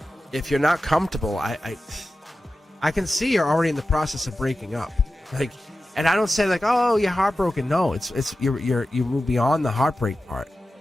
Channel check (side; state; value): both; normal; correlation 0.93